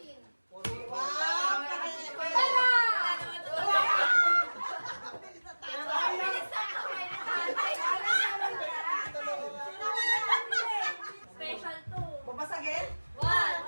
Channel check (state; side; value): inverted; both; correlation -1.00